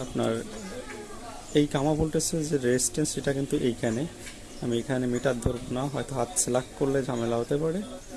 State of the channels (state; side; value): identical; both; correlation 1.00